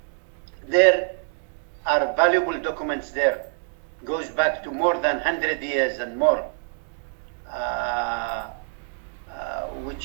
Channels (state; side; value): silent; left; digital silence